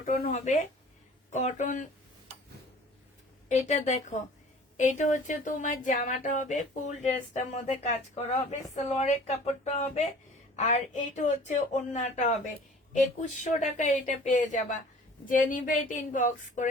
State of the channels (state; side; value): normal; both; correlation 0.47